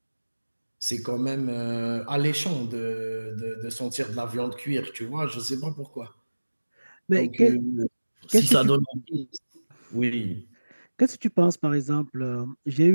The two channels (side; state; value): both; inverted; correlation -1.00